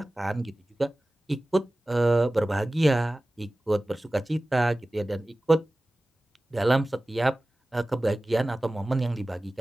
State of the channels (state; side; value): normal; both; correlation 0.97